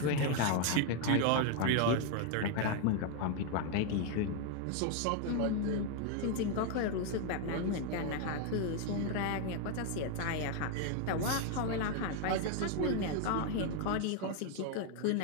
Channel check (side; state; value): both; different; correlation 0.00